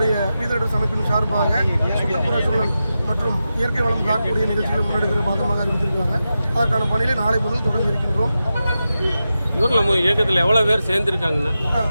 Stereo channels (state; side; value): inverted; both; correlation -0.91